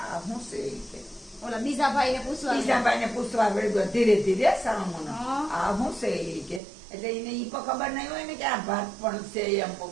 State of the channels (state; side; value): drops out; left; at 6.6 s